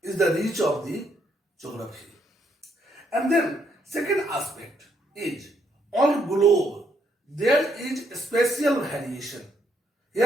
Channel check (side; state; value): both; normal; correlation 0.73